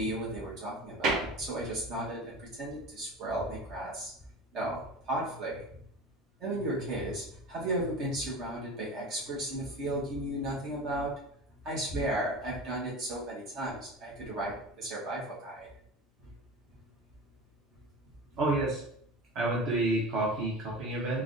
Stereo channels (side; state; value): both; normal; correlation 0.33